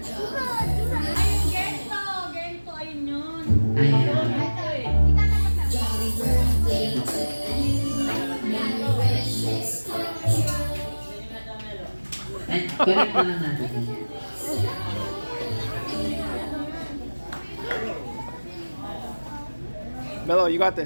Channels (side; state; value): both; inverted; correlation -1.00